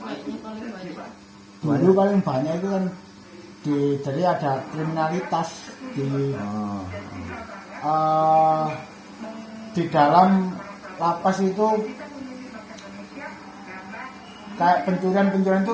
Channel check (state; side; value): identical; both; correlation 1.00